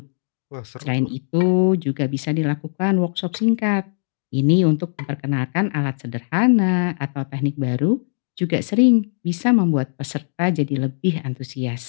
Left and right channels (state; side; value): silent; right; digital silence